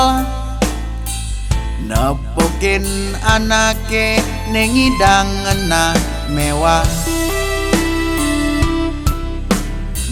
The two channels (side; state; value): both; identical; correlation 1.00